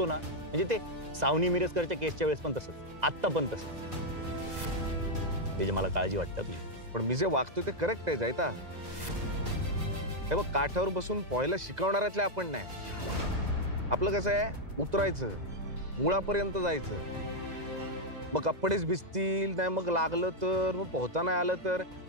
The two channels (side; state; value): left; late; 2.0 ms